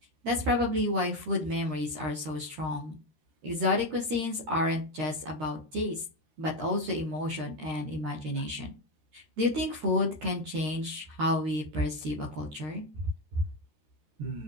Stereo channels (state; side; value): late; left; 13 ms